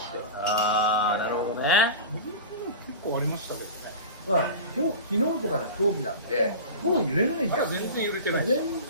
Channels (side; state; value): both; inverted; correlation -0.31